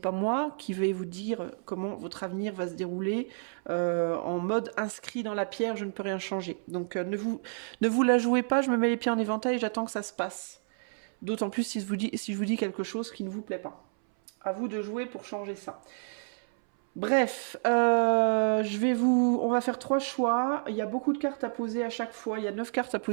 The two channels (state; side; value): silent; left; 58 dB below the other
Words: moi qui vais vous dire comment votre avenir va se dérouler en mode inscrit dans la pierre, je ne peux rien changer. Donc ne vous la jouez pas, je me mets les pieds en éventail et j'attends que ça se passe. D'autant plus si je vous dis quelque chose qui ne vous plaît pas. À vous de jouer pour changer ça. Bref, on va faire 3 choix. Il y a beaucoup de cartes à poser à chaque fois. Il y a 9 cartes à